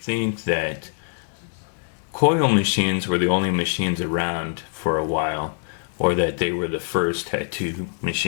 think that coil machines were the only machines around for a while, or that they were the first tattoo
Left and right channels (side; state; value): right; silent; digital silence